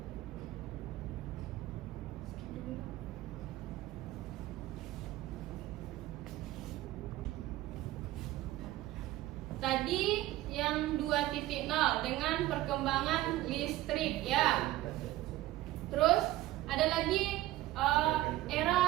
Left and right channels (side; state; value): left; quieter; 16.1 dB